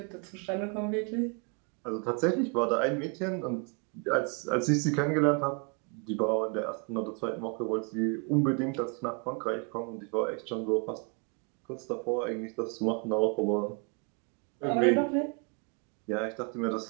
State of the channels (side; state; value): left; quieter; 35.3 dB